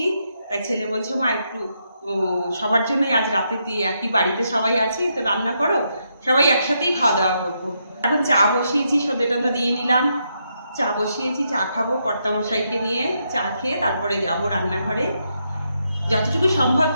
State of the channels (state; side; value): inverted; both; correlation -0.80